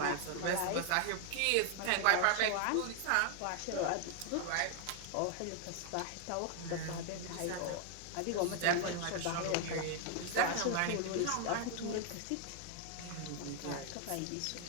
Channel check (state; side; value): different; both; correlation 0.00